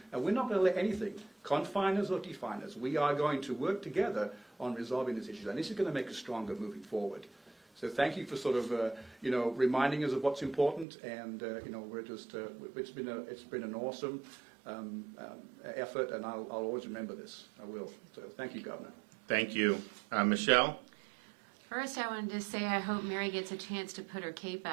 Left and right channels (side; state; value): left; drops out; at 10.9 s